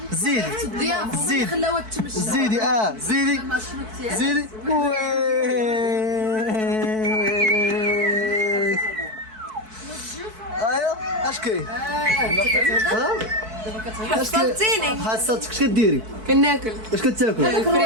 زيدي زيدي زيدي زيدي زيدي وي ايوا اش كاين حصلتيني حصلتك اش كديري كناكل اش كتاكل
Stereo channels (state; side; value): late; left; 4.6 ms